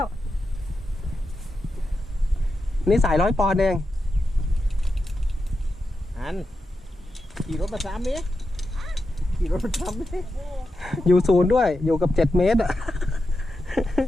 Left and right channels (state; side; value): normal; both; correlation 0.89